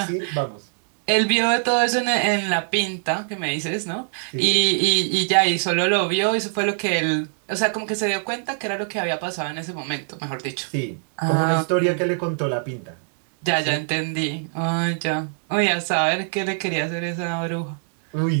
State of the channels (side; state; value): left; silent; digital silence